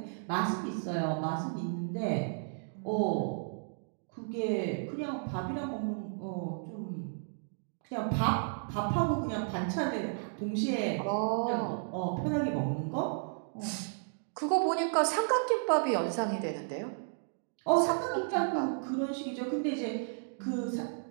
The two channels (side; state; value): left; silent; digital silence